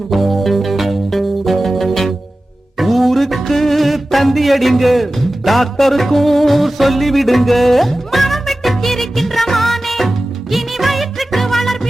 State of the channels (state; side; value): normal; both; correlation 0.95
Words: டாக்டருக்கும் சொல்லிவிடுங்க. மனம் விட்டு சிரிக்கின்ற மானே இனி வயிற்றுக்கு